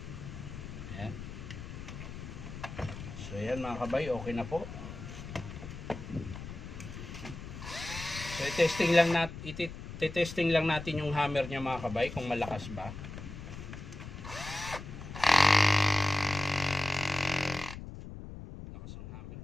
ayan. So, ayan mga kabay, okay na po. So, i-testing lang natin yung hammer niya mga kabay kung malakas ba. Lakas ang hammer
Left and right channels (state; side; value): noise; left; rumble, 10 dB below the sound